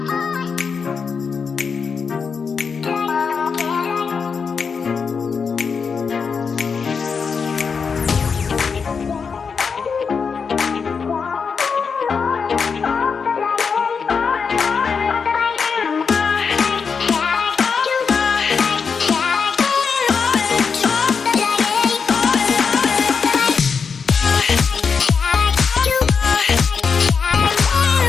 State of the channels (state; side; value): quieter; right; 5.7 dB